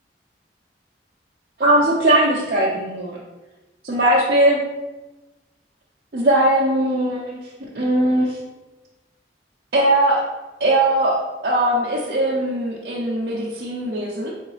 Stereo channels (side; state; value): both; normal; correlation -0.03